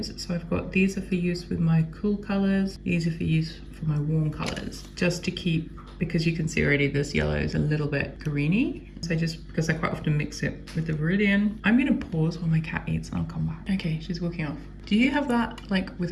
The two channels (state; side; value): identical; both; correlation 1.00